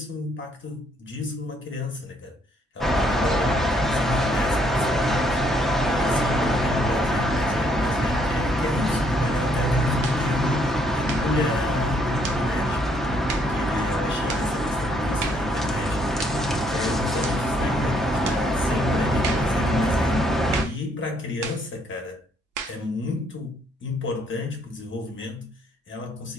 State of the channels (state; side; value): normal; both; correlation 0.69